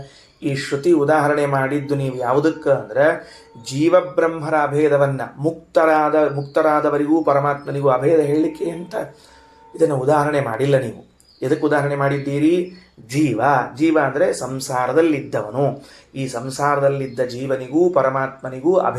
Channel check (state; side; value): identical; both; correlation 1.00